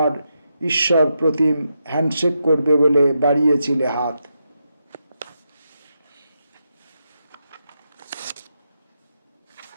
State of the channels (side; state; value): both; inverted; correlation -0.85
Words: ঈশ্বর প্রতিম হ্যান্ডশেক করবে বলে বাড়িয়েছিলে হাত।